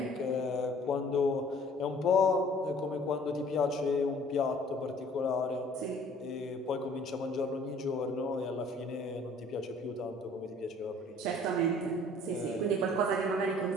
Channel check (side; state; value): both; normal; correlation 0.53